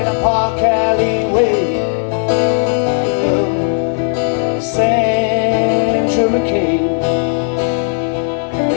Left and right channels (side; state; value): right; silent; 56 dB below the other